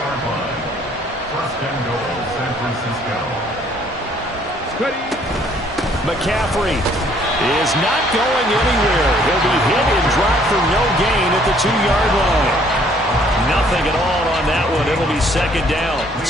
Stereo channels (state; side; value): normal; both; correlation 0.62